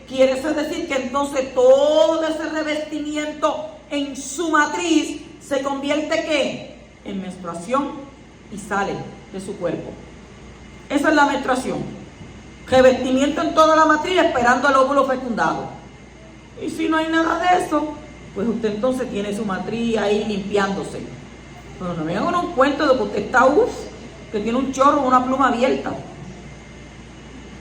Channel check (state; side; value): identical; both; correlation 1.00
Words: quiere decir que entonces todo ese revestimiento en su matriz se convierte ¿qué? En menstruación y sale de su cuerpo. Esa es la menstruación. Revestimiento en toda la matriz esperando el óvulo fecundado. Y si no hay nada de eso, pues usted entonces tiene su matriz ahí limpiándose. Pero no me hagan un cuento de que usted está que tiene un chorro o una pluma abierta.